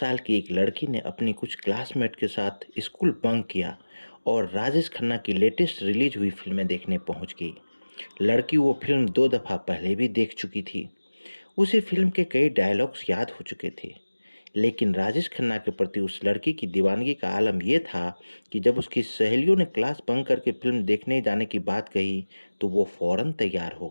की एक लड़की ने अपनी कुछ क्लासमेट के साथ स्कूल बंक किया और राजेश खन्ना की लेटेस्ट रिलीज हुई फिल्में देखने पहुंच गई। लड़की वो फिल्म 2 दफ़ा पहले भी देख चुकी थी। उसे फिल्म के कई डायलॉग्स याद हो चुके थे। लेकिन राजेश खन्ना के प्रति उस लड़की की दीवानगी का आलम यह था कि जब उसकी सहेलियों ने क्लास बंक करके फिल्म देखने जाने की बात कही, तो वो फौरन तैयार हो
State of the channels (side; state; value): both; inverted; correlation -1.00